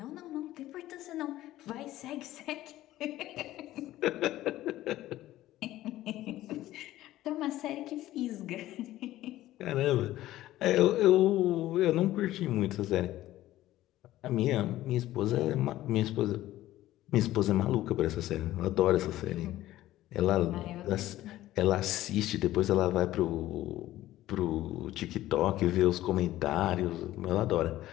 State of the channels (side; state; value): right; quieter; 15.0 dB